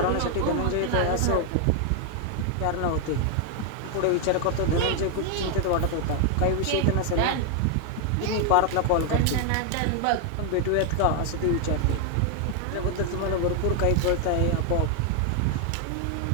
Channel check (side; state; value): both; different; correlation 0.00